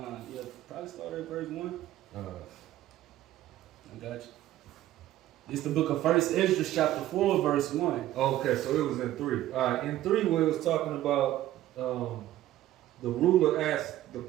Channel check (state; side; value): quieter; left; 14.0 dB